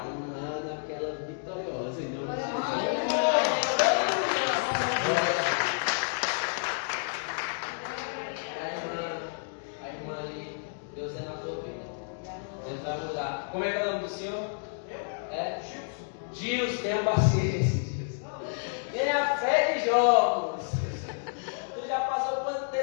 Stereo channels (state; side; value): silent; right; digital silence